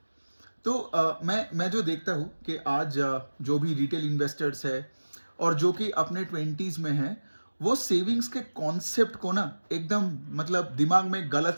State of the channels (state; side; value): inverted; both; correlation -1.00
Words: तो मैं जो देखता हूँ कि आज जो भी रिटेल इन्वेस्टर्स है और जो कि अपने ट्वेंटीज़ में हैं, वो सेविंग्स के कॉन्सेप्ट को ना एकदम मतलब दिमाग में गलत